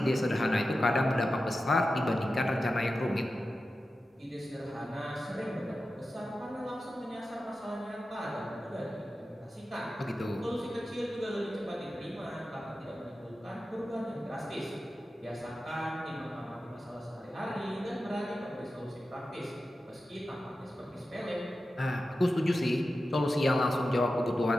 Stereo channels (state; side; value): normal; both; correlation 0.92